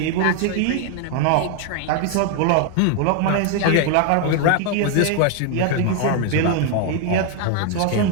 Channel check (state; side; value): different; both; correlation 0.00